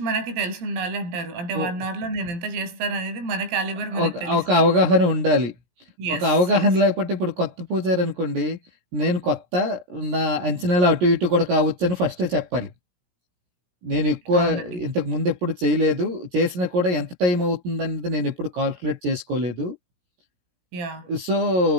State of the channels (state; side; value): late; left; 17 ms